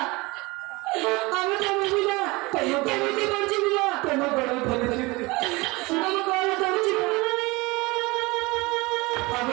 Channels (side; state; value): left; quieter; 23.6 dB